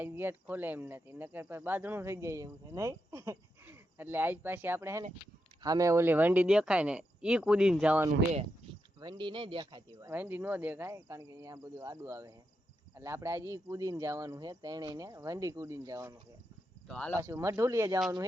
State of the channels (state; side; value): normal; both; correlation 0.85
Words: ગેટ ખોલે એમ નથી, નકર પછી બાંધણું થઈ જાય એવું છે નહીં. એટલે આજ પાછી આપણે છે ને સામે ઓલી વંડી દેખાય ને ઈ કૂદીને જવાનું છે. વંડી નહીં દેખાતી હોય, વંડી ન દેખાય કારણ કે અહીંયા બધું આડું આવે છે. એટલે આપણે આજે ઈ કૂદીને જવાનું છે, ત્રણેયને વંડી કૂદીને જવાનું છે. તો હાલો પાછું મઢુલીએ જવાનું